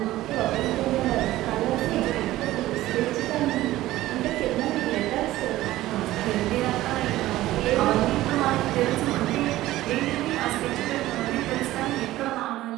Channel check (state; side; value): quieter; left; 15.9 dB